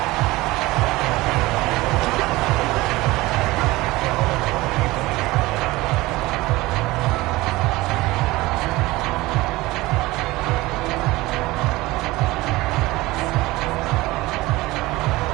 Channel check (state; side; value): quieter; left; 19.9 dB